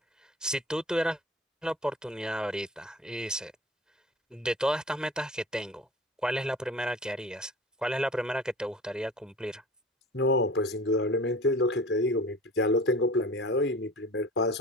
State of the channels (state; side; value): normal; both; correlation 0.40